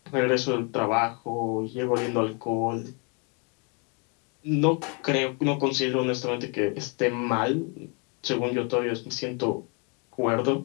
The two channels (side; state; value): right; quieter; 35.1 dB